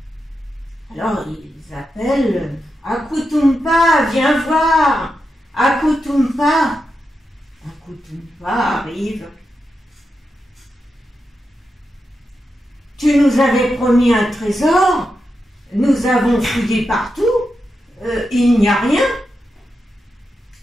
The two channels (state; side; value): normal; both; correlation 0.87